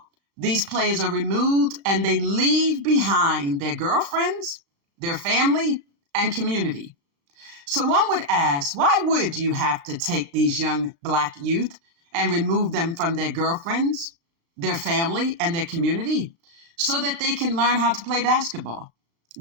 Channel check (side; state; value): left; late; 35 ms